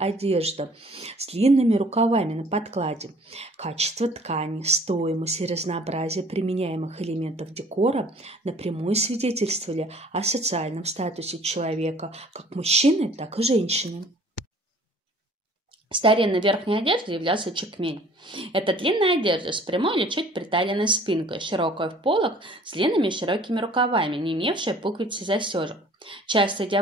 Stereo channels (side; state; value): both; normal; correlation 0.52